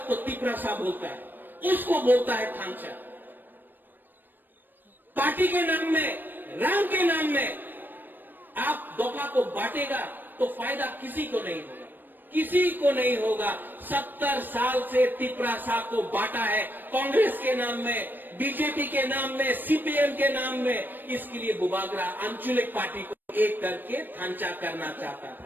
तिपरासा बोलता है, उसको बोलता है थांचा। पार्टी के नाम में, रंग के नाम में आप दोफा को बांटेगा तो फायदा किसी को नहीं होगा, किसी को नहीं होगा। 70 साल से तिपरासा को बांटा है, कांग्रेस के नाम में, बीजेपी के नाम में, सीपीएम के नाम में। इसके लिए बुबागरा आंचलिक पार्टी को एक करके थांचा करना चाहता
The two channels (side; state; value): left; late; 0.092 ms